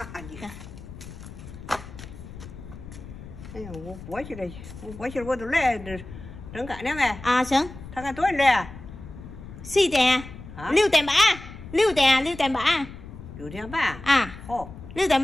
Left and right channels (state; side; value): noise; left; rumble, 14 dB below the sound